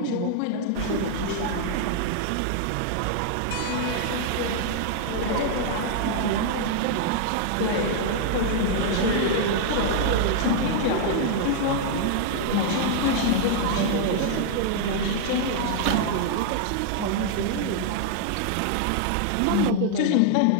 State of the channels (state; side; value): different; both; correlation -0.01